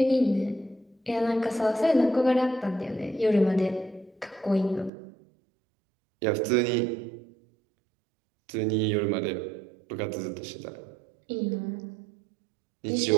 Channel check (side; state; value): left; drops out; at 4.9 s